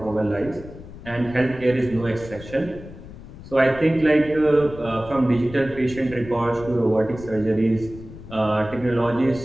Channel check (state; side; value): noise; left; rumble, 15 dB below the sound